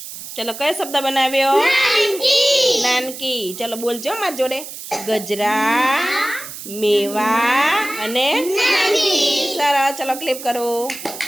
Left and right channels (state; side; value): noise; right; hiss, 11 dB below the sound